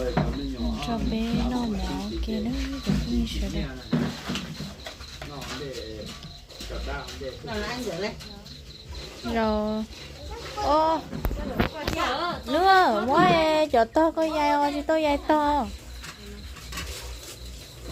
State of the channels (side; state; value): both; identical; correlation 1.00